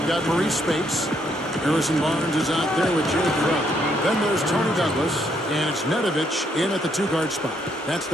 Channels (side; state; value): both; normal; correlation 0.72